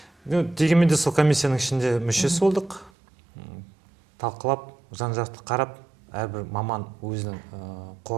Дегенмен де сол комиссияның ішінде мүшесі болдық. Талқылап, жан-жақты қарап, әрбір маман өзінің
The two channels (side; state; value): left; drops out; at 2.9 s